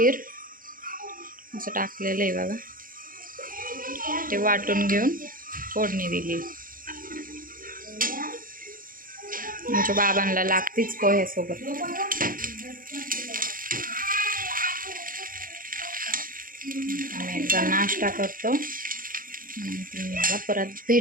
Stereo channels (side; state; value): left; late; 0.41 ms